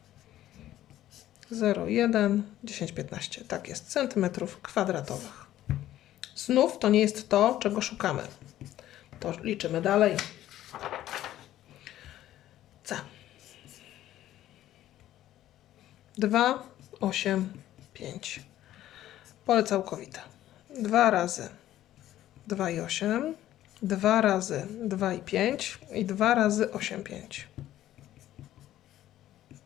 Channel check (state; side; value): quieter; right; 13.3 dB